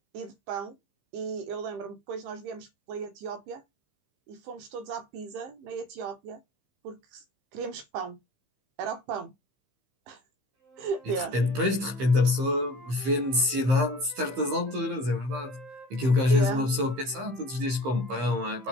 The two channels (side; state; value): left; late; 15 ms